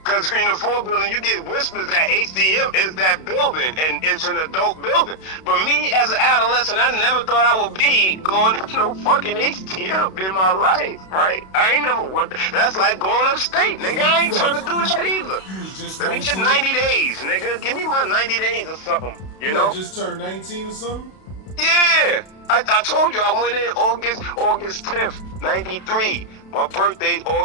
Because in the 4 building, you get whispers that HDM is that building, and it's an adult building. But me, as an adolescent, I never thought I would be going to no fucking HDM in my life, right? I ain't never want that. That's like going upstate, nigga. I ain't trying to do shit either. Let me get 90 days, nigga. Give me my 90 days or something, you know? Just turned 19 or something? Yeah. I told you I went in August 10th, 93. My birthday's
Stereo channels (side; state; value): right; late; 32 ms